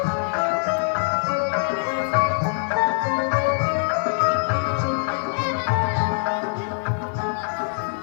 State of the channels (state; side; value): silent; right; digital silence